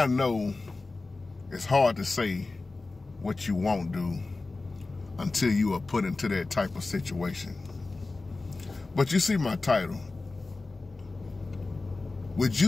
know it's hard to say what you won't do until you are put into that type of situation. But you see my title. Would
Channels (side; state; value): right; quieter; 3.4 dB